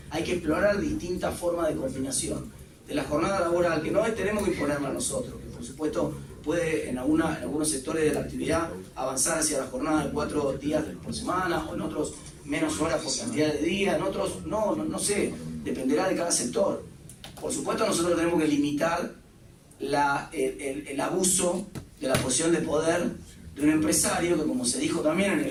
hay que explorar distintas formas de combinación de la jornada laboral, que no tenemos que imponerla a nosotros, que por supuesto puede en algunos sectores de la actividad avanzar hacia la jornada de 4 días por semana, o en otros menos horas por cantidad de días, en otros no sé, dependerá de cada sector. Por supuesto nosotros tenemos que limitar el abuso de la posición de poder de un empresario, que como se dijo también en el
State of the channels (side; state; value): both; identical; correlation 1.00